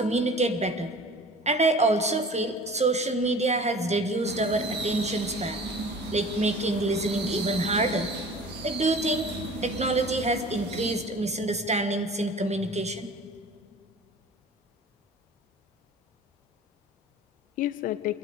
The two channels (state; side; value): normal; both; correlation 0.43